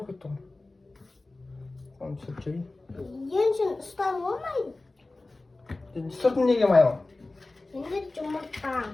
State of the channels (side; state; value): right; quieter; 3.1 dB